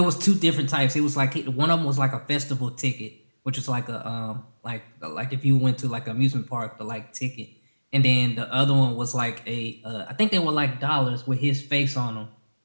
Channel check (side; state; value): both; inverted; correlation -1.00